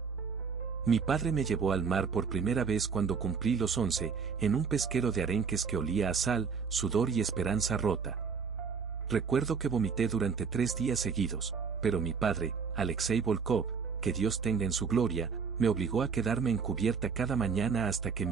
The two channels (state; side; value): quieter; left; 5.7 dB